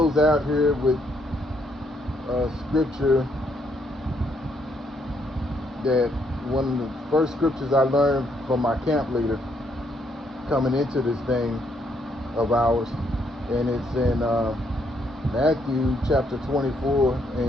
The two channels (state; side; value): normal; both; correlation 0.72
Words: out here with scripture that one of the first scriptures I learned from my camp leader coming into this thing of ours, and it's in Matthew chapter 24